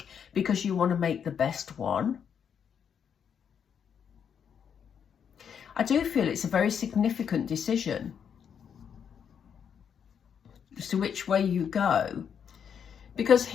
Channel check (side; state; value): right; quieter; 7.7 dB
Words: because you want to make the best one. I do feel it's a very significant decision as to which way you go. Because